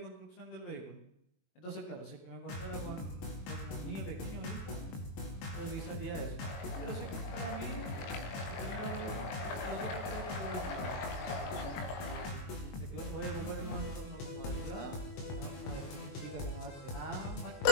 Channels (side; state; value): right; late; 22 ms